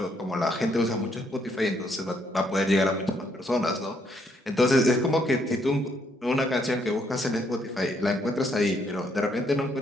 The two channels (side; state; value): both; normal; correlation 0.72